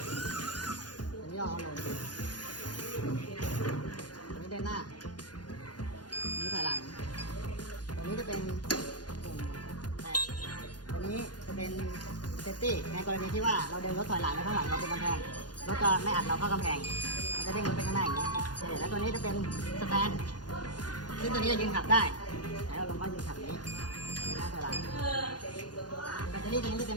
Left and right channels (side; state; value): right; late; 0.69 ms